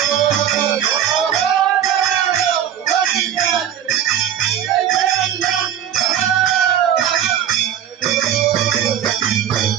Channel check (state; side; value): quieter; left; 9.8 dB